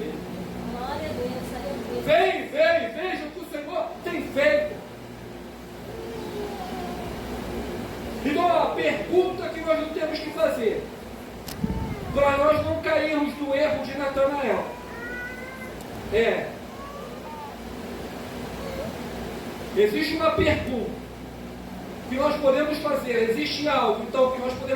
Glória a Deus, aleluia. Vem ver e veja pergunta que nós não temos que fazer para nós não cairmos no erro de Natanael existe uma pergunta que nós podemos fazer, existe algo então que nós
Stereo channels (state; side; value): identical; both; correlation 1.00